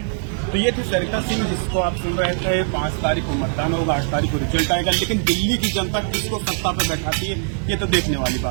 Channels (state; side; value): silent; left; 57 dB below the other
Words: तो ये थी सरिता सिंह, जिसको आप सुन रहे थे। 5 तारीख को मतदान होगा, 8 तारीख को रिजल्ट आएगा, लेकिन दिल्ली की जनता किसको सत्ता पर बैठाती है ये तो देखने वाली